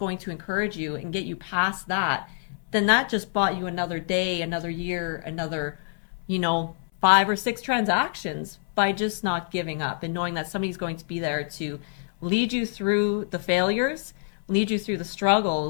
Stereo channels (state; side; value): silent; right; 61 dB below the other